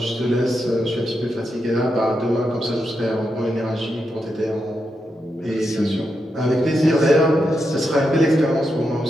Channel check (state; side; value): normal; both; correlation 0.85